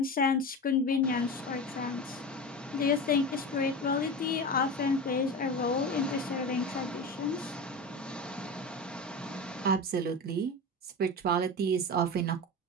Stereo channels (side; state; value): both; normal; correlation 0.26